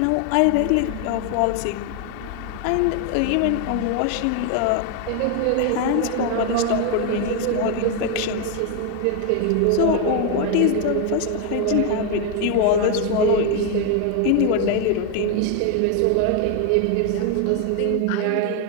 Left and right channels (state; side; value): different; both; correlation 0.01